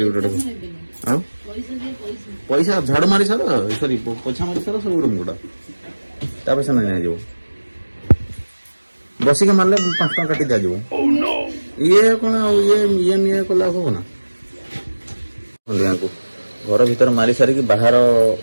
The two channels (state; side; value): inverted; both; correlation -1.00